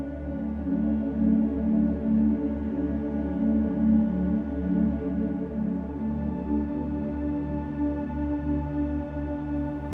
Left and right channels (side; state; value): both; identical; correlation 1.00